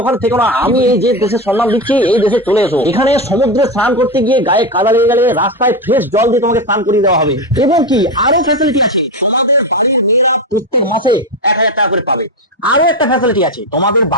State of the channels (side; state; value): both; normal; correlation 0.16